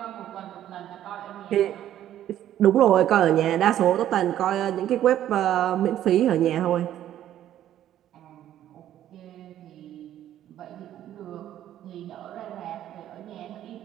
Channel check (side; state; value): left; quieter; 11.8 dB